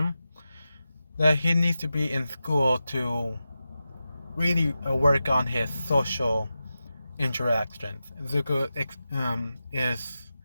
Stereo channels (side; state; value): both; inverted; correlation -0.92